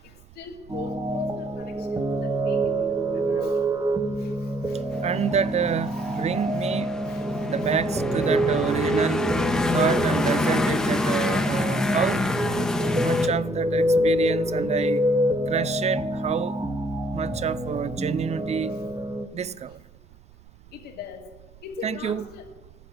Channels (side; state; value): right; noise; rumble, 25 dB below the sound